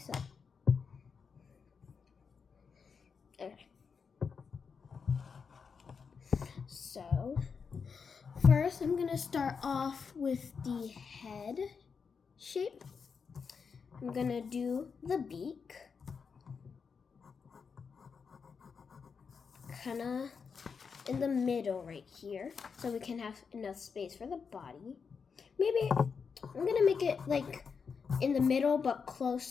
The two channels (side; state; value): right; quieter; 5.8 dB